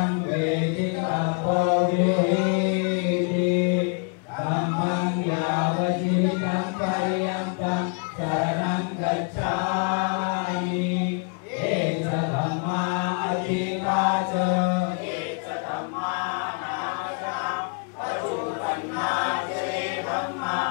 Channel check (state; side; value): quieter; right; 38.3 dB